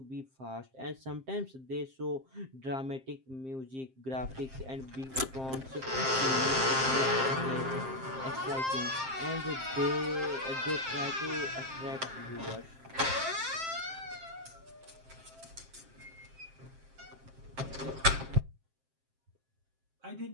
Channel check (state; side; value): late; left; 7.6 ms